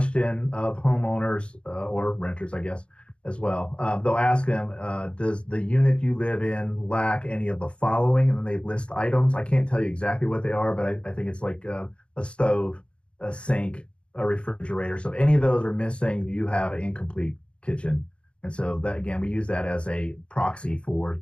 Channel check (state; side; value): late; right; 0.057 ms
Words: of homeowners or renters, I guess, as well. They'll ask them, does the unit you live in lack any of the following? And then they list items. I can't tell you exactly what they are, but I think it's like a stove, a sink, a refrigerator. So if any of those are missing, you have an incomplete kitchen. And so that, again, we use that as a proxy for